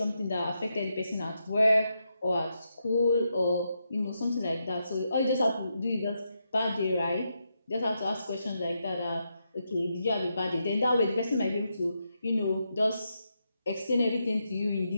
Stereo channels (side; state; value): both; inverted; correlation -0.83